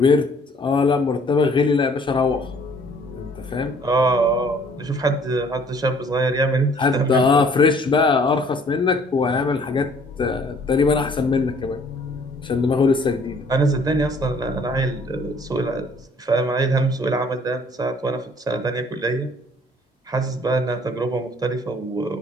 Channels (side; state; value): both; normal; correlation 0.58